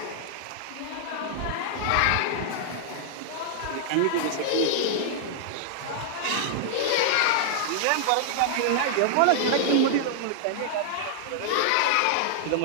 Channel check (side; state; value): both; different; correlation -0.01